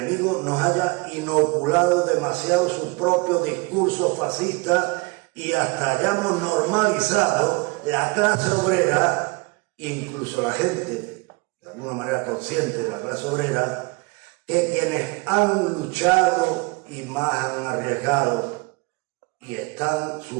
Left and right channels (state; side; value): quieter; left; 26.8 dB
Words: nos haya inoculado demasiado su propio discurso fascista y hasta hayamos normalizado la clase obrera, incluso la gente, de alguna manera consciente de la clase obrera, que quienes han luchado y más han arriesgado y están